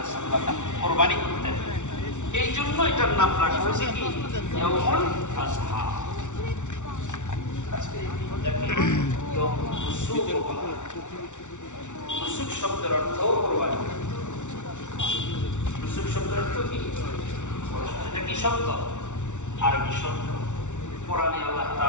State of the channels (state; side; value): late; right; 0.85 ms